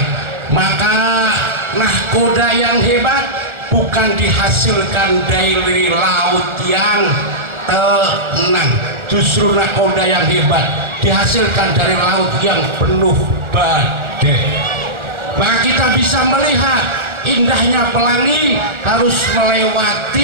Maka nahkoda yang hebat bukan dihasilkan dari laut yang tenang, justru nahkoda yang hebat dihasilkan dari laut yang penuh badai. Maka kita bisa melihat indahnya pelangi harus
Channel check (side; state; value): left; late; 1.3 ms